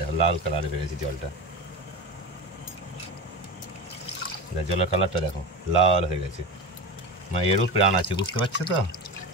লাল কালারে বেরিয়েছে জলটা, জলের কালারটা দেখো লাল হয়ে গেছে। মানে এরও প্রাণ আছে, বুঝতে পারছো তো।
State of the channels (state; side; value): normal; both; correlation 0.26